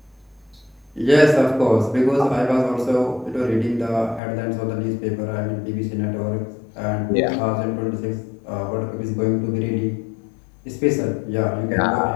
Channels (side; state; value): right; drops out; at 4.2 s